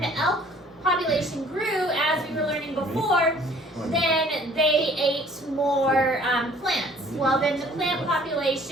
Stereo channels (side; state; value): both; normal; correlation 0.55